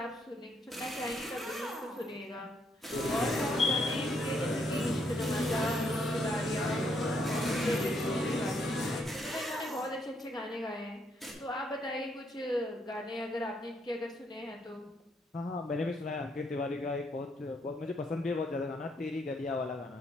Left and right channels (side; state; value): both; normal; correlation 0.73